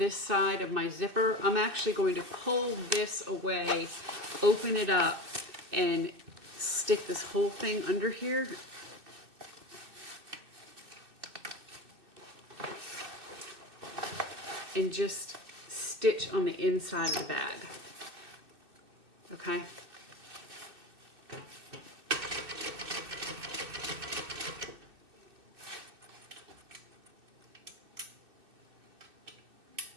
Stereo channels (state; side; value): late; left; 2.6 ms